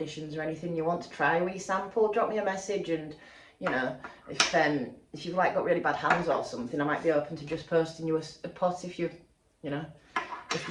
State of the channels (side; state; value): both; identical; correlation 1.00